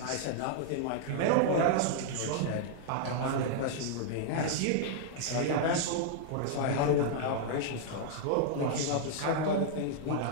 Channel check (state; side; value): different; both; correlation -0.01